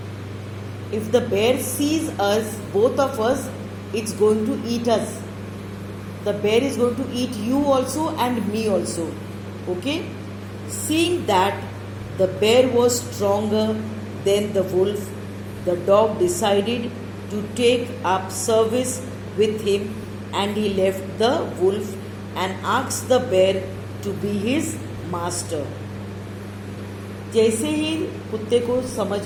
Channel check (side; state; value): both; identical; correlation 1.00